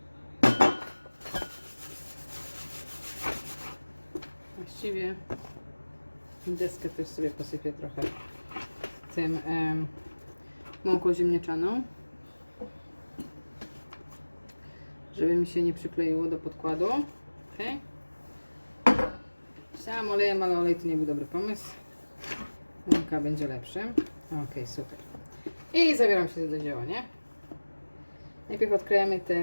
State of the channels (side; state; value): both; inverted; correlation -1.00